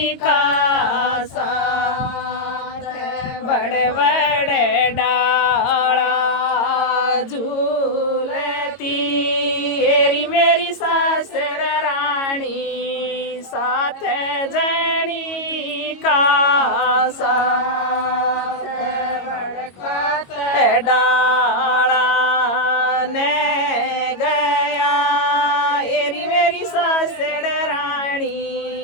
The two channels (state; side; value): late; right; 22 ms